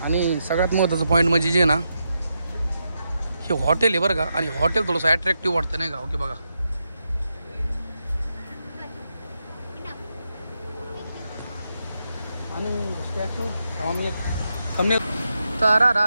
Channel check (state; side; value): inverted; both; correlation -0.85